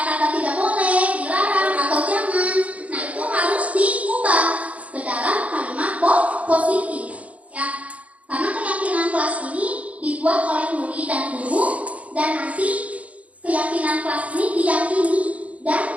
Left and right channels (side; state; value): left; late; 0.067 ms